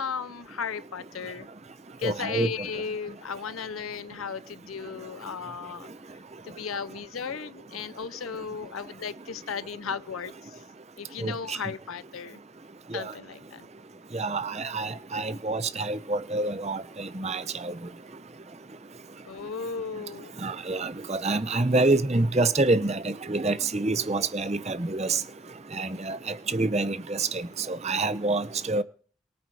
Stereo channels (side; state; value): both; normal; correlation 0.44